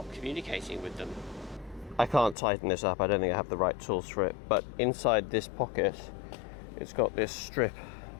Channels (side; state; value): right; drops out; at 2.4 s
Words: communicating with them. I can't tighten this up, I don't think I have the right tools for it, but inside this pocket it's got this strip